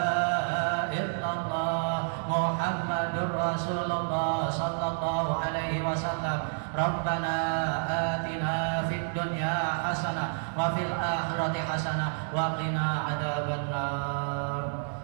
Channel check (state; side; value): silent; left; digital silence